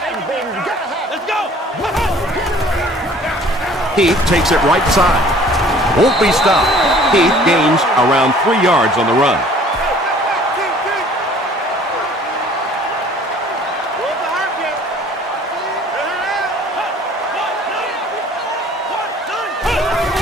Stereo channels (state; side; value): normal; both; correlation 0.52